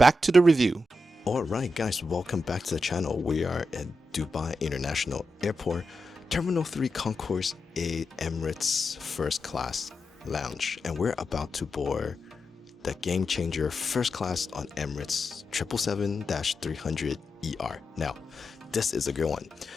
to the review. Alright guys, welcome back to the channel. We are at Dubai International Airport, Terminal 3 Concourse 8 Emirates First Class Lounge, and we're about to board the game changer first class on Emirates 777-300ER. Now, this is a good one.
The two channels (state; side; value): normal; both; correlation 0.88